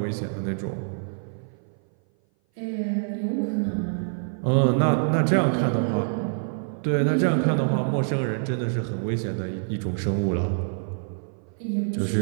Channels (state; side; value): silent; left; 57 dB below the other